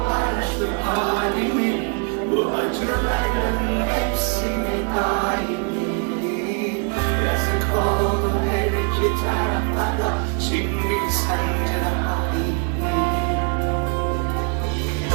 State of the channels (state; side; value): quieter; left; 38.2 dB